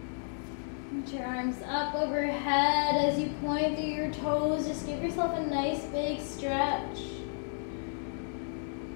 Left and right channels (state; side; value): silent; right; 56 dB below the other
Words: Put your arms up overhead as you point through your toes. Just give yourself a nice big stretch.